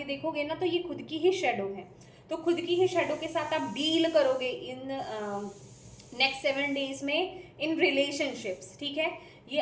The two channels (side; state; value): both; identical; correlation 1.00